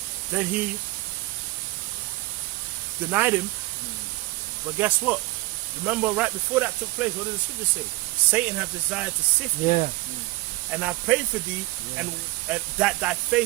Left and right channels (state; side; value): quieter; left; 21.2 dB